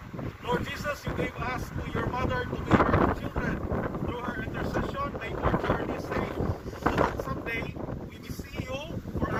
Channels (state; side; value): identical; both; correlation 1.00